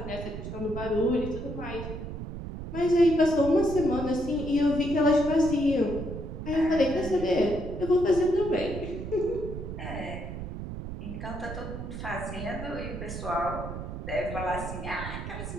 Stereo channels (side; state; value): right; noise; rumble, 7 dB below the sound